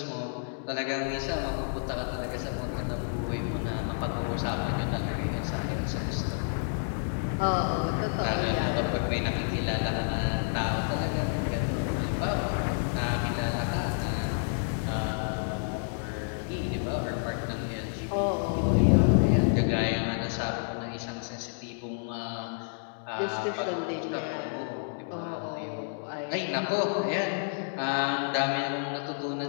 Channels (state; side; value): silent; right; digital silence